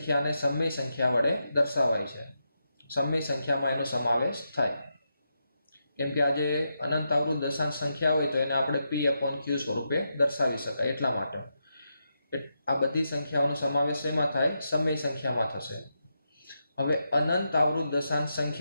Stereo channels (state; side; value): inverted; both; correlation -0.85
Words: સમય સંખ્યા વડે દર્શાવાય છે. સમય સંખ્યામાં એનો સમાવેશ થાય. કેમ કે આ જે અનંત આવૃત દશાંશ સંખ્યા હોય તો એને આપણે P/Q સ્વરૂપે દર્શાવી શકાય. એટલા માટે આ બધી સંખ્યાઓનો સમાવેશ એમાં થાય, સમય સંખ્યામાં થશે. હવે અનંત આવૃત દશાંશ